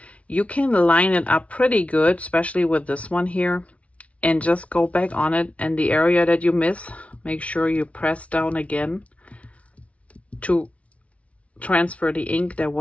You can line it up pretty good, especially with this one here, and just go back on it, and the area that you miss, make sure you press down again to transfer the ink that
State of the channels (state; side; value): late; right; 0.064 ms